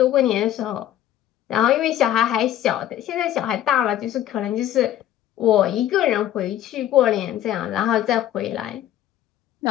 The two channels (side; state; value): right; quieter; 11.9 dB